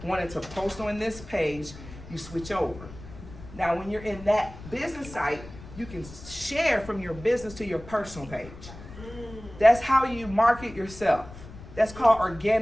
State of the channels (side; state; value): left; noise; rumble, 16 dB below the sound